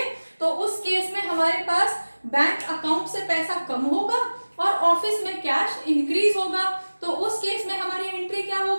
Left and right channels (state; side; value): inverted; both; correlation -1.00